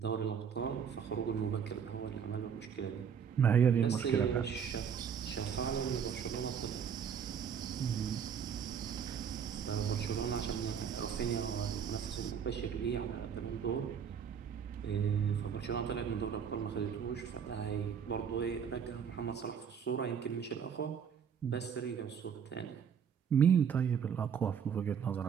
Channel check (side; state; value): left; quieter; 7.5 dB